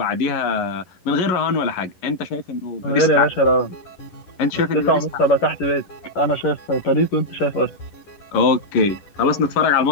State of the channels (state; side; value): late; right; 11 ms